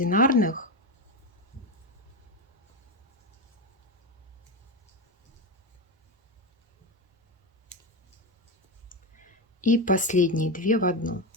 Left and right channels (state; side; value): normal; both; correlation 0.16